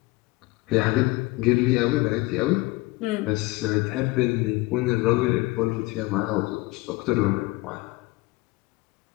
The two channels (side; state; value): right; quieter; 21.6 dB